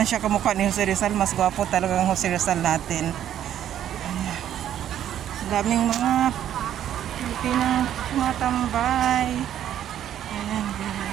siya kamukha ni Jose Rizal. Mas gwapo talaga ang Jose Rizal natin. Daming mga Pilipinang tumatambay. Ayan,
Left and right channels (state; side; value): quieter; left; 10.8 dB